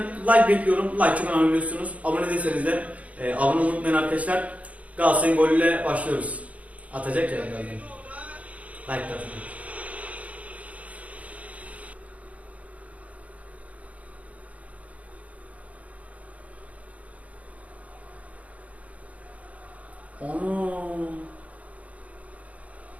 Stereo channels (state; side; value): late; left; 0.068 ms